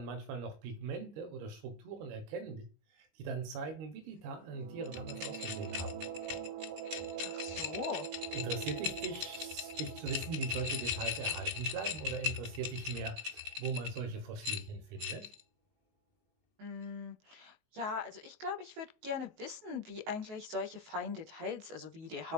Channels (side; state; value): left; late; 19 ms